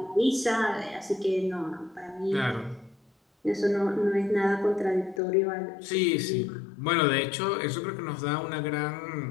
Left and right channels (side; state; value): right; drops out; at 5.2 s